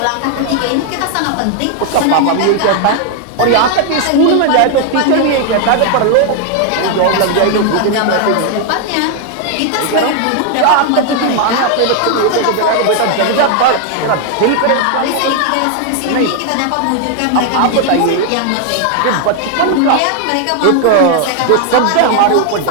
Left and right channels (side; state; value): both; different; correlation 0.00